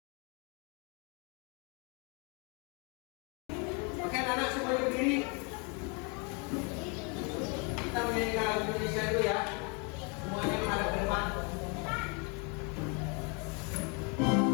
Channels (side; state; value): right; quieter; 33.8 dB